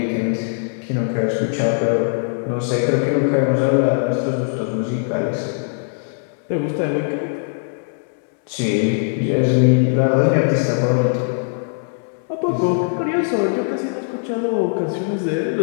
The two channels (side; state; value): right; silent; 64 dB below the other